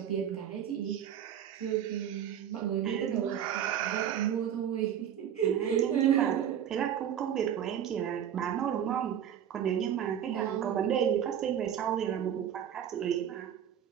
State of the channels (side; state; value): left; quieter; 9.5 dB